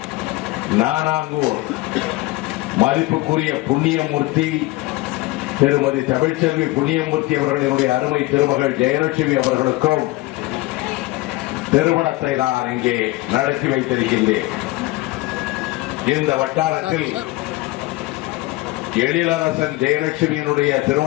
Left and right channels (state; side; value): quieter; right; 19.9 dB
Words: நானாங்கூர் மதிப்புக்குரிய புண்ணியமூர்த்தி திருமதி தமிழ்ச்செல்வி புண்ணியமூர்த்தி அவர்களினுடைய அருமை திருமகள் ஜெயலட்சுமி அவர்களுக்கும் திருமணத்தை நான் இங்கே நடத்தி வைத்திருக்கின்றேன். இந்த வட்டாரத்தில் எழிலரசன் ஜெயலட்சுமியினுடைய